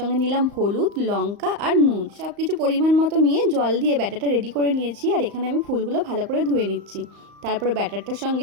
নিলাম হলুদ, লঙ্কা আর নুন, সব কিছু পরিমাণ মতো নিয়ে জল দিয়ে ব্যাটারটা রেডি করে নিয়েছি। আর এখানে আমি ফুলগুলো ভালো করে ধুয়ে নিচ্ছি। তারপরে ব্যাটারটার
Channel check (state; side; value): late; left; 35 ms